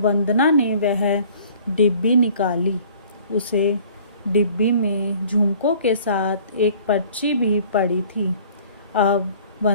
वंदना ने वह डिब्बी निकाली। उसे डिब्बी में झुमकों के साथ एक पर्ची भी पड़ी थी। अब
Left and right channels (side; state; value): both; inverted; correlation -0.52